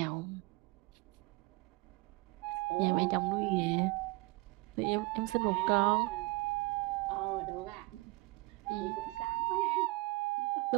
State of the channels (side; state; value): left; quieter; 24.6 dB